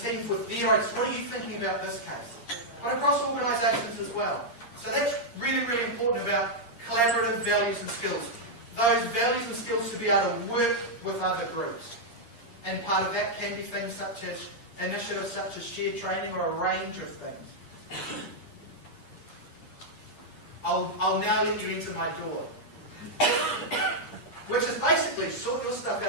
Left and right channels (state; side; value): late; right; 8.6 ms